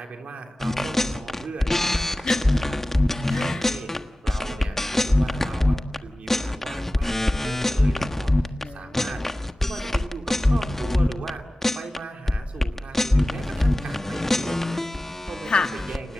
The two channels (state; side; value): normal; both; correlation 0.97